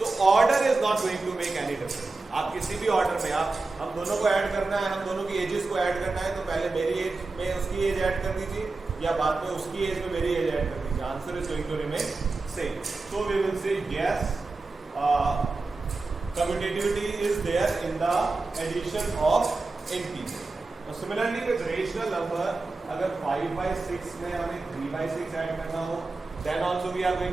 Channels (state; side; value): quieter; left; 3.6 dB